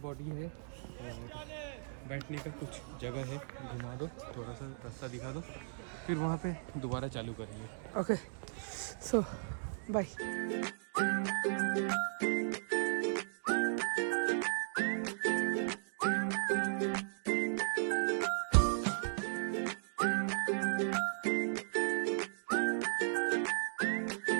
बॉडी है और बैठने का कुछ जगह है। घुमा दो, थोड़ा सा रास्ता दिखा दो, फिर वहाँ पे दोबारा चालू करेंगे। Okay so bye.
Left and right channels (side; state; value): left; silent; digital silence